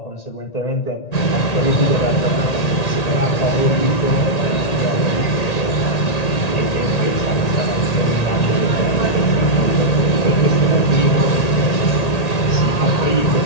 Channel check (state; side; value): late; right; 1.8 ms